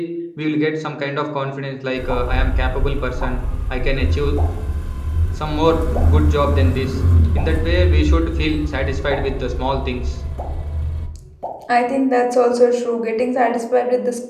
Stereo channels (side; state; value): both; identical; correlation 1.00